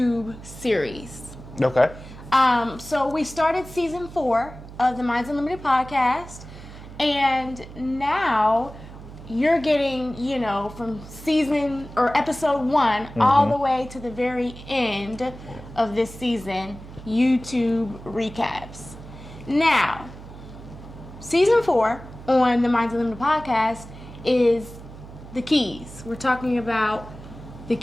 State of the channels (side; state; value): right; noise; hum, 15 dB below the sound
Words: series. Okay. So we started season 4 of the Minds Unltd Podcast, and now you're getting, from season or episode 1 all the way to the very end of this season, YouTube recaps. Now, season 4 on the Minds Unltd Podcast is the keys. We're talking about the